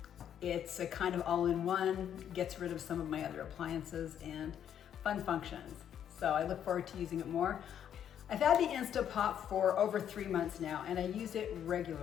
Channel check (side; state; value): right; quieter; 9.5 dB